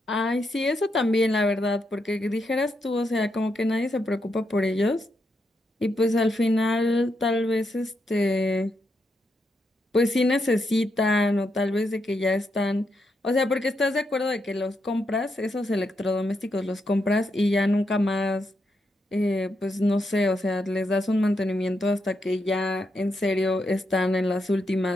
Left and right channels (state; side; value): normal; both; correlation 0.82